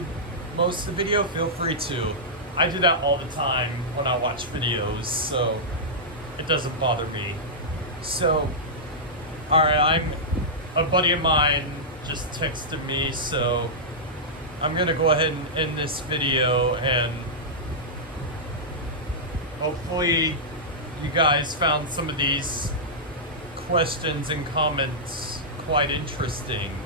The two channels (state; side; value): normal; both; correlation -0.11